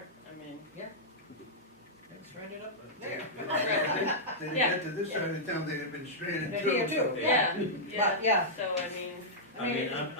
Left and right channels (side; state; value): both; normal; correlation -0.09